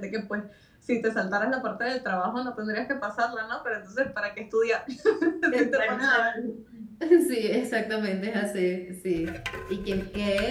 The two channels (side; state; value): both; identical; correlation 1.00